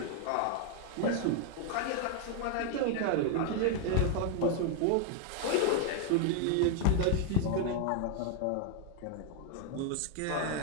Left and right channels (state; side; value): different; both; correlation 0.01